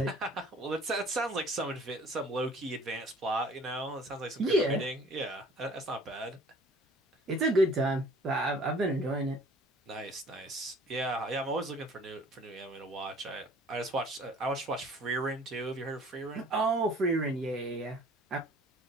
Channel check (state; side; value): normal; both; correlation 0.52